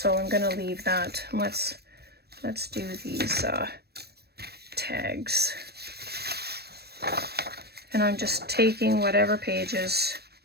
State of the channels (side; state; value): left; late; 0.47 ms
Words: I'm gonna leave that. Let's do these tags. And I'm just taking whatever pages.